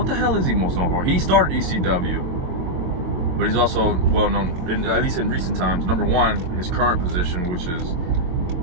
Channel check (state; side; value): late; left; 22 ms